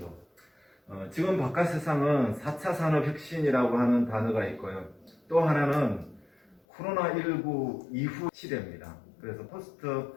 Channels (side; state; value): right; drops out; at 6.6 s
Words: 지금 바깥 세상은 4차 산업혁신이라고 하는 단어가 있고요. 또 하나는 코로나19 이후 시대입니다. 그래서 포스트